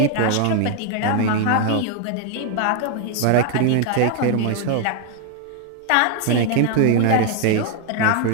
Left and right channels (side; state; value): both; different; correlation 0.00